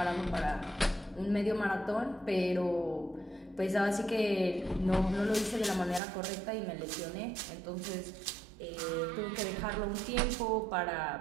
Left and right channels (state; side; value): drops out; left; at 6.0 s